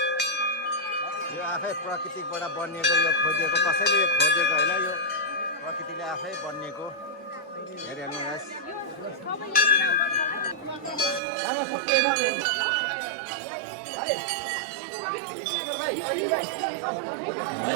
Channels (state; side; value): drops out; left; at 11.2 s